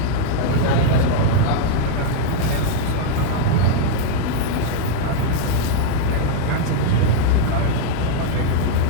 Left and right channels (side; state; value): both; different; correlation -0.01